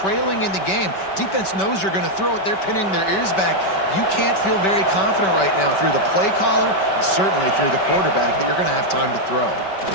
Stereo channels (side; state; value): right; late; 5.2 ms